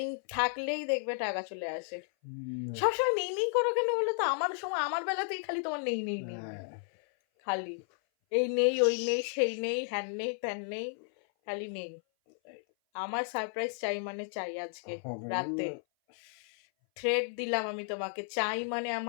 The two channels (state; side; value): silent; right; 56 dB below the other